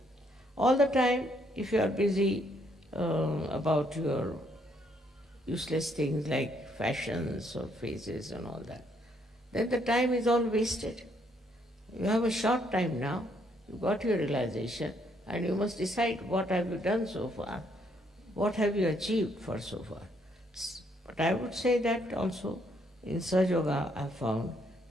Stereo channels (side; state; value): both; normal; correlation 0.70